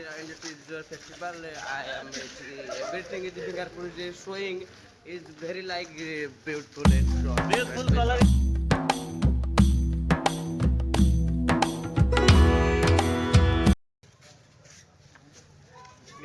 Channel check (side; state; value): both; identical; correlation 1.00